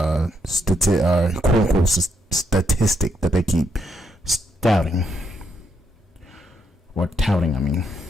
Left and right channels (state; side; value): normal; both; correlation 0.77